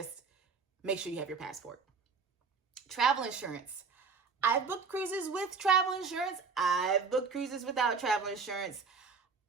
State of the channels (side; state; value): left; quieter; 5.1 dB